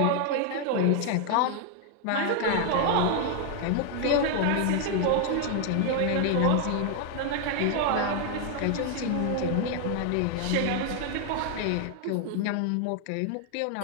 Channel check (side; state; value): both; different; correlation 0.00